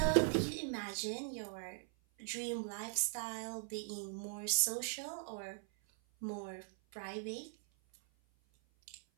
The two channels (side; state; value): left; silent; 51 dB below the other